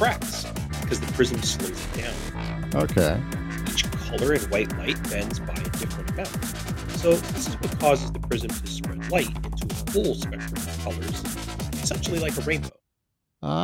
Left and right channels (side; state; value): both; identical; correlation 1.00